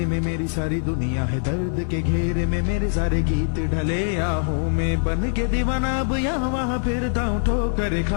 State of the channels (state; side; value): silent; right; digital silence